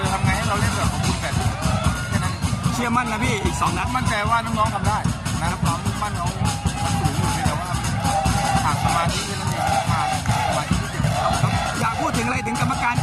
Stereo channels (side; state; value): both; identical; correlation 1.00